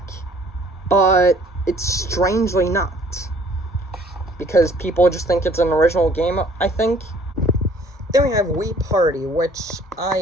but it's strangely not, because people just think it's an original game, I think. Then we have Wii Party, which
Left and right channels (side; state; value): both; normal; correlation 0.56